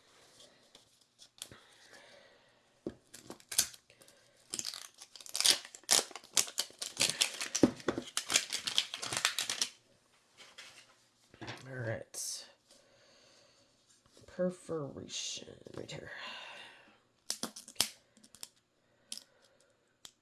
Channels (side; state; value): both; identical; correlation 1.00